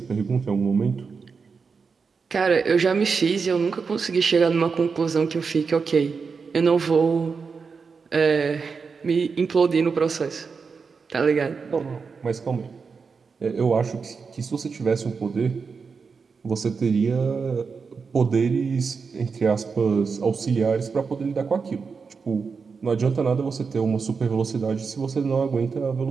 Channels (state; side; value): quieter; left; 5.2 dB